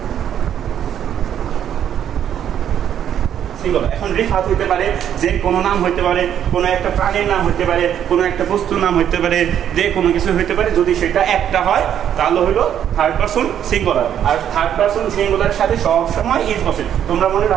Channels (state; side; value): quieter; left; 9.8 dB